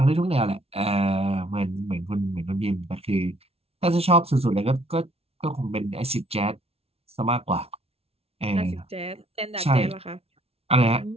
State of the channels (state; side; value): late; left; 0.29 ms